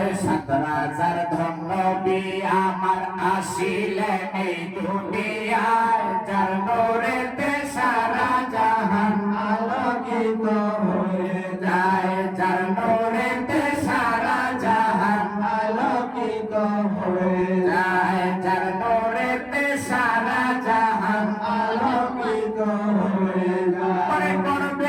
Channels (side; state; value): both; identical; correlation 1.00